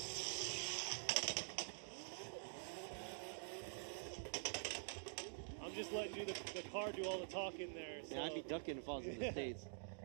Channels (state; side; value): silent; left; digital silence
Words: I'm just letting the car do all the talking there. So. Yeah, I'd be ducking if I was in the States.